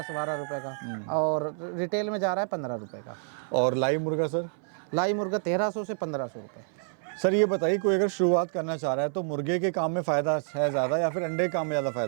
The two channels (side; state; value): left; silent; 58 dB below the other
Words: रुपए का, और रिटेल में जा रहा है 15 रुपए का। और लाइव मुर्गा सर? लाई मुर्गा 1300 से 1500 रुपए। सर ये बताइए, कोई अगर शुरुआत करना चाह रहा है तो मुर्गे के काम में फ़ायदा है ज़्यादा या फिर अंडे के काम में ज़्यादा